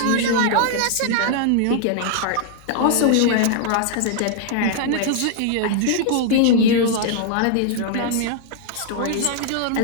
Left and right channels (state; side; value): different; both; correlation 0.00